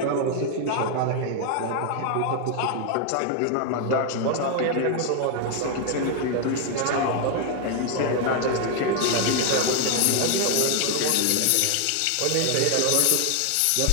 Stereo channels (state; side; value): different; both; correlation 0.00